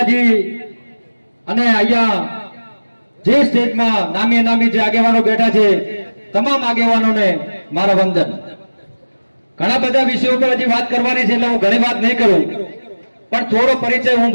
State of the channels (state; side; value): inverted; both; correlation -1.00